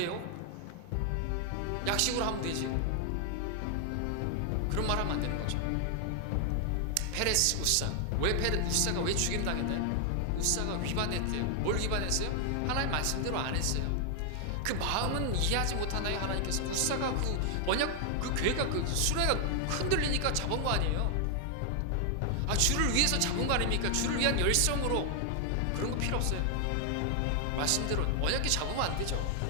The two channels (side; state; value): both; different; correlation 0.00